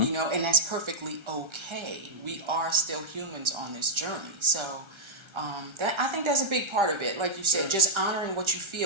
and that's perfectly okay. We are still humans on this journey, so that I think that's a big part of it. Like you said, just honoring what you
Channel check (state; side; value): late; left; 1.3 ms